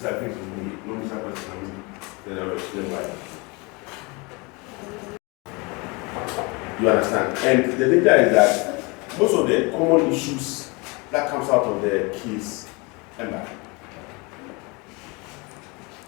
with me? No, Mr. President, then I'll explain why. You understand? And the danger is that most of the common issues that comes out of the case, Emma.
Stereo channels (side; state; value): right; quieter; 27.8 dB